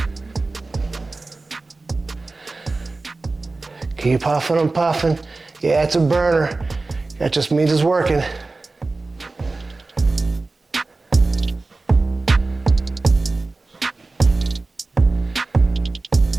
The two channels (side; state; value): left; quieter; 3.5 dB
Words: Keep puffing and puffing. Yeah, it's a burner. That just means it's working.